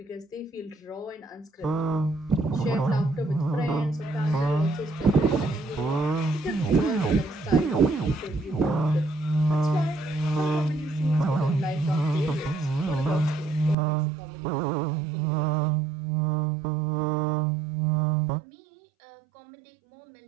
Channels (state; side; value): drops out; left; at 13.8 s